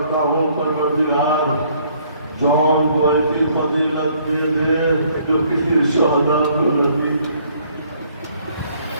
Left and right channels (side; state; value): both; inverted; correlation -0.63